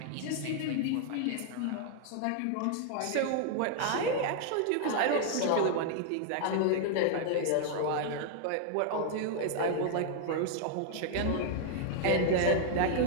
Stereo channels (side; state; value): both; different; correlation 0.00